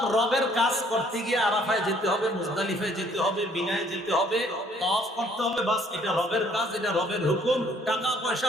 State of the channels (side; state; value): both; normal; correlation 0.61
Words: রবের কাজ করতে গিয়ে আরাফায় যেতে হবে, মুজদালিফায় যেতে হবে, মিনায় যেতে হবে, তাওয়াফ করতে হবে, বাস এটা রবের কাজ, এটা রবের হুকুম। টাকা পয়সা